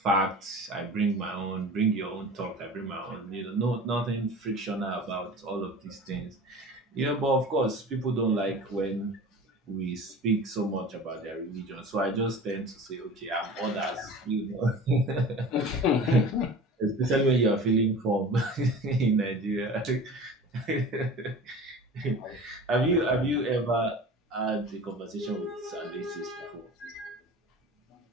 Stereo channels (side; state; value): both; normal; correlation 0.38